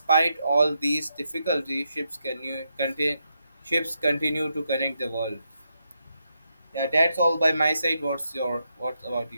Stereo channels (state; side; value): inverted; both; correlation -0.82